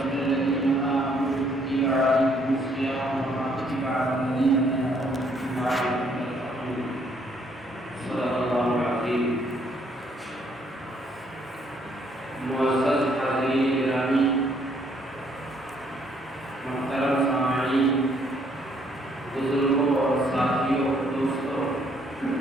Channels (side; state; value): both; normal; correlation 0.67